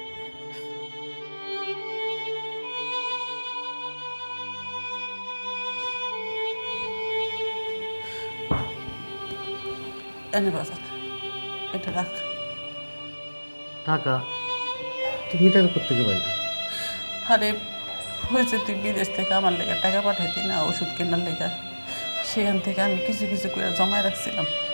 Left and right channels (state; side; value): inverted; both; correlation -1.00